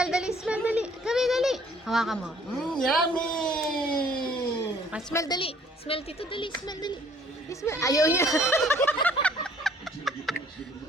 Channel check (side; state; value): both; normal; correlation 0.59